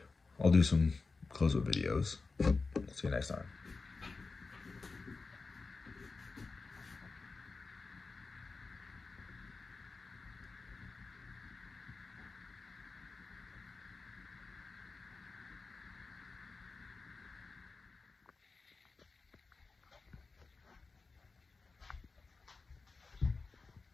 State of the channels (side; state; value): right; quieter; 4.1 dB